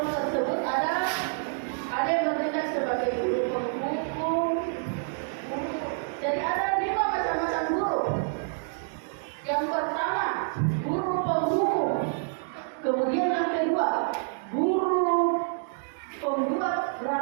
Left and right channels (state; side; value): silent; left; digital silence